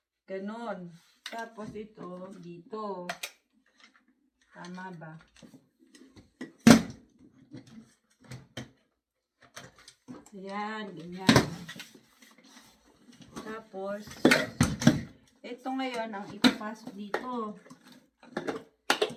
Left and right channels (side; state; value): both; identical; correlation 1.00